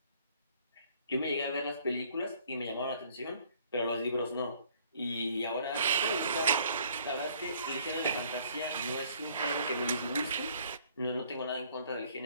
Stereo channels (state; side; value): inverted; both; correlation -0.60